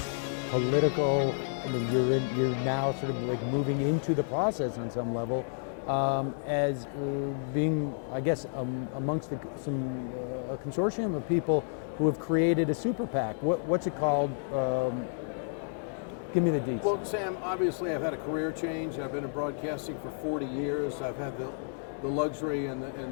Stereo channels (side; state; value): right; silent; digital silence